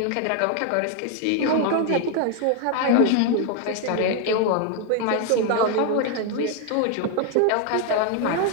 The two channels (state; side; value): different; both; correlation 0.01